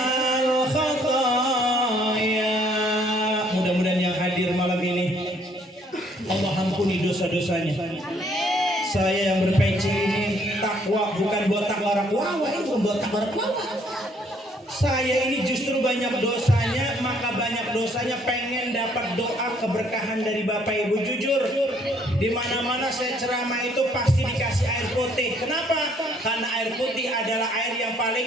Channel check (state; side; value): normal; both; correlation 0.64